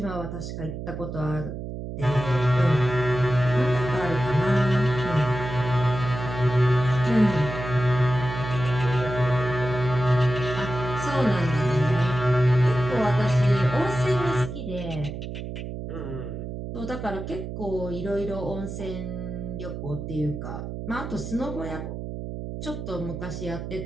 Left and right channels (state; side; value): noise; right; hum, 7 dB below the sound